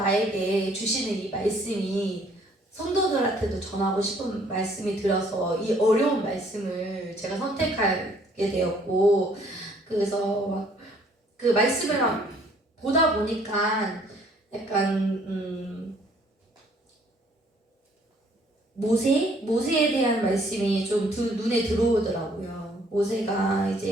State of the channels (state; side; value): normal; both; correlation 0.61